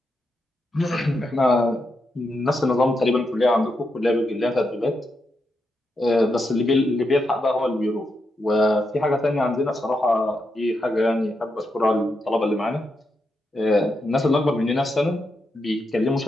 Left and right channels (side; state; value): both; normal; correlation 0.84